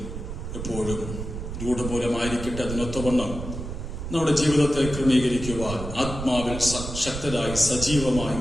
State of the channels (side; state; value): right; noise; rumble, 7 dB below the sound